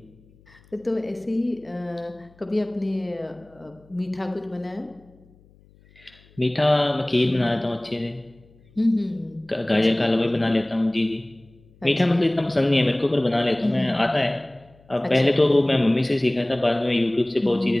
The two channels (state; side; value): noise; left; hum, 29 dB below the sound